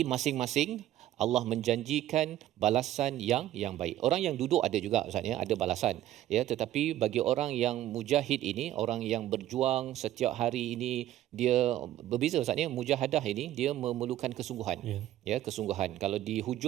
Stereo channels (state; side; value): quieter; left; 13.3 dB